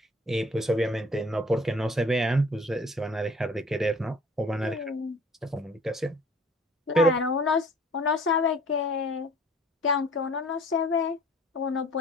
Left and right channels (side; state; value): both; normal; correlation 0.51